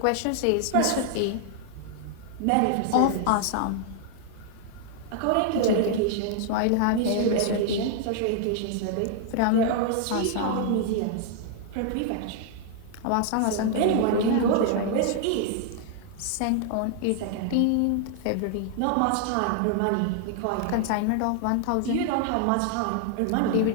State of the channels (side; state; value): both; different; correlation 0.00